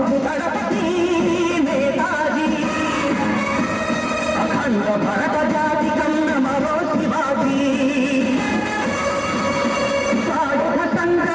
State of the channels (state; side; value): identical; both; correlation 1.00